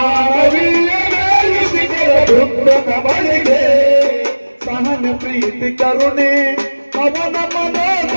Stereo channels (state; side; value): inverted; both; correlation -1.00